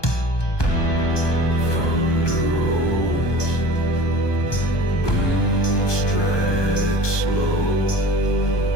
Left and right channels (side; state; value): right; late; 1.2 ms